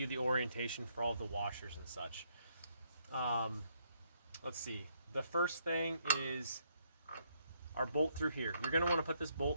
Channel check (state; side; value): inverted; both; correlation -0.73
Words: the orientation for all of the washers and such. Let's see. The first thing is our bolt through here. You're going to want to put this